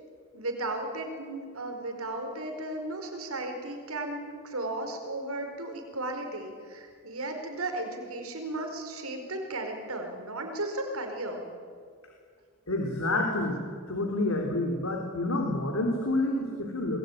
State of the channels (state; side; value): normal; both; correlation 0.20